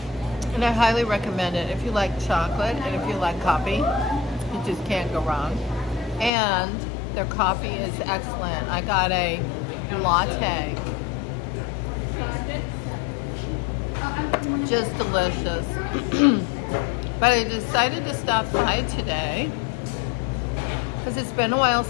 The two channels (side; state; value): right; drops out; at 6.3 s